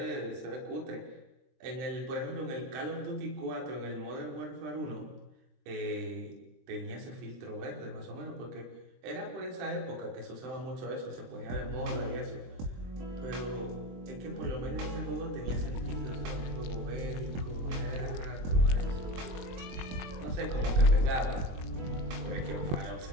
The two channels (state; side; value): late; left; 22 ms